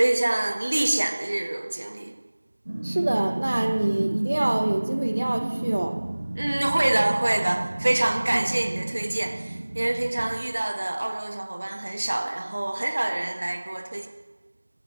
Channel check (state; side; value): inverted; both; correlation -1.00